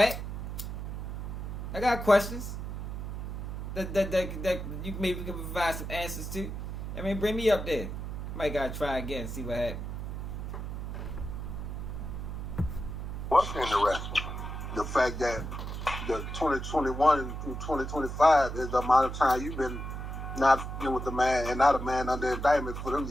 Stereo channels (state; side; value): noise; right; hum, 6 dB below the sound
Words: I got questions that you maybe can provide some answers to. I mean, bring me up there. Might gotta try again and see what happens. What's interesting? The fact that the 2021 through 2025 is the amount of time you've been not dealing with the man and not a man under indictment for them